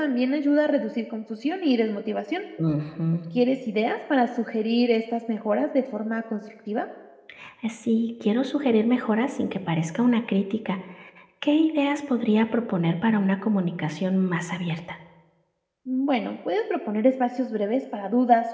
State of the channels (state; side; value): identical; both; correlation 1.00